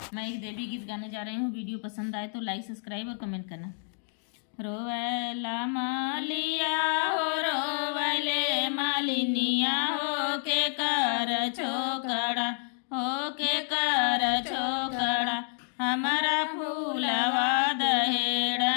मैं एक देवी गीत गाने जा रही हूँ। वीडियो पसंद आए तो लाइक, सब्सक्राइब और कमेंट करना। रोवैला मालिया हो रोवैले मालिनिया हो के कर छोकड़ा, हो के कर छोकड़ा, हमारा फूलवा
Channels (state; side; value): silent; right; 57 dB below the other